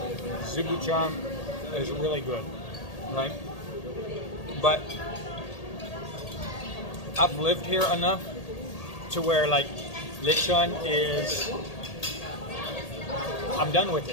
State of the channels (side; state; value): right; late; 1.8 ms